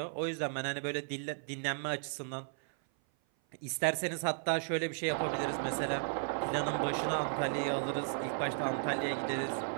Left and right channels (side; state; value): left; silent; 54 dB below the other